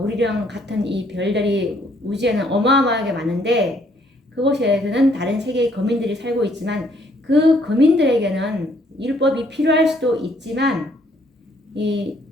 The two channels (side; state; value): both; normal; correlation 0.66